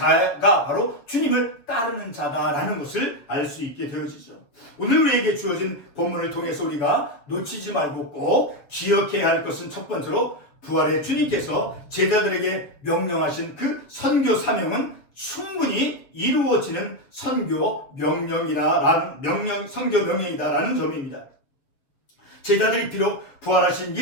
바로 주님을 따르는 자다라는 것을 알 수 있게 되어지죠. 오늘 우리에게 주어진 본문을 통해서 우리가 놓치지 말고 꼭 기억해야 할 것은, 첫 번째로 부활의 주님께서 제자들에게 명령하신 그 선교 사명은 충분히 이루어지는 선교 명령이다라는 점입니다. 제자들이 비록 부활하신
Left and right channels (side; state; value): right; late; 7.3 ms